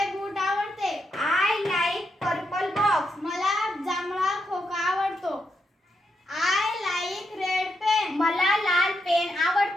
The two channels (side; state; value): both; normal; correlation 0.82